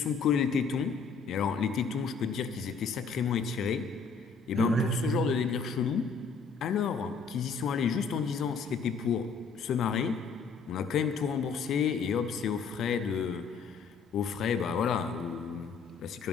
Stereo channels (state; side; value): quieter; right; 5.3 dB